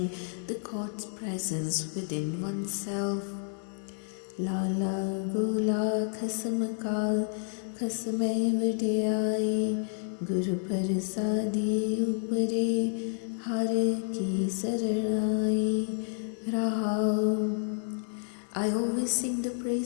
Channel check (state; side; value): silent; right; 58 dB below the other